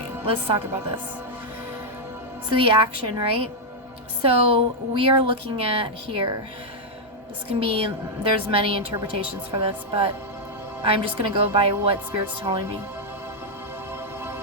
let's talk about this. So the action, right? So we are looking at here. This can be, there's many interpretations for this, but I'm just going to go by what Spirit's telling me.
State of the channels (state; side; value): normal; both; correlation -0.01